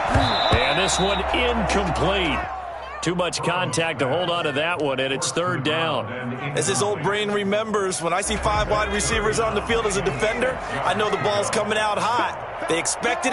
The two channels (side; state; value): both; identical; correlation 1.00